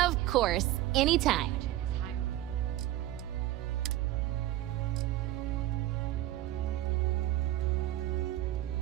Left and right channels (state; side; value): quieter; left; 14.7 dB